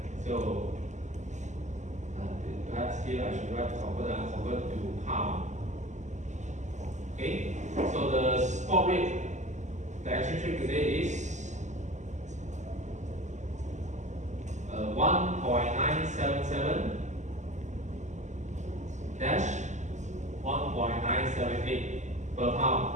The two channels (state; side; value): late; left; 0.34 ms